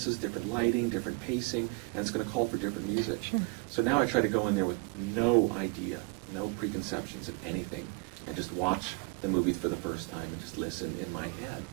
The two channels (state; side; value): quieter; left; 30.1 dB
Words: different lighting, different pacing, and it's going to call for different music. Sure. So now I try to go in there with no idea, no preconceptions of anything, and just watch the movie for the first time and just listen in my head.